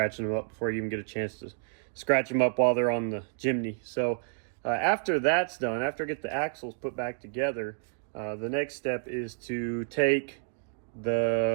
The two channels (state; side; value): silent; left; 58 dB below the other